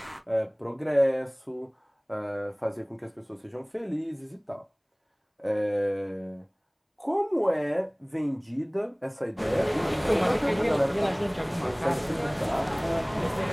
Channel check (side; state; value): both; identical; correlation 1.00